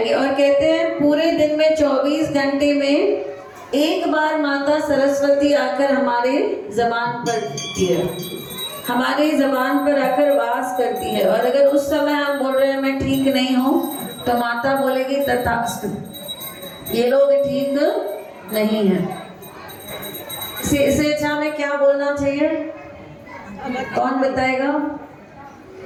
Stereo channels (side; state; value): both; identical; correlation 1.00